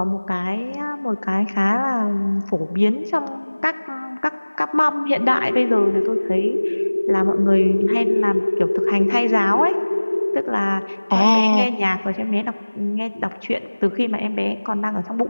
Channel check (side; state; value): both; inverted; correlation -1.00